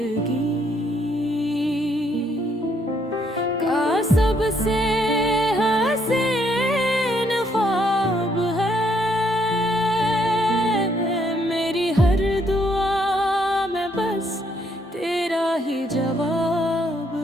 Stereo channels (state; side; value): normal; both; correlation 0.70